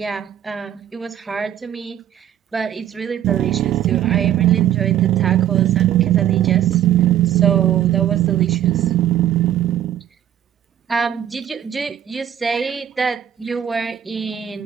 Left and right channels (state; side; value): quieter; left; 10.8 dB